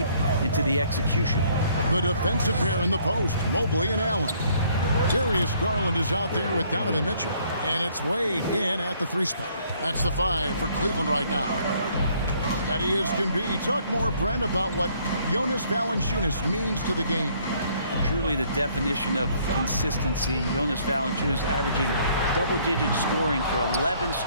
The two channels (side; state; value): both; inverted; correlation -0.63